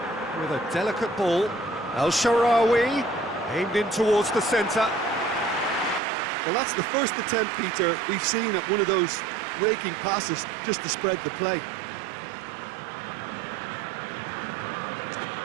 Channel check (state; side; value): drops out; left; at 6.0 s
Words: With a delicate ball. El Shaarawy aimed in towards the centre. Well, that's the first attempt, Peter, we've seen at one of those raking passes just to spread the play.